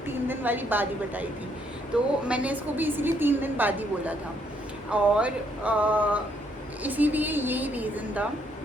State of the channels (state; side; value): normal; both; correlation 0.71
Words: 3 दिन वाली बाद ही बताई थी, तो मैंने इसको भी इसीलिए 3 दिन बाद ही बोला था और इसीलिए यही रीज़न था।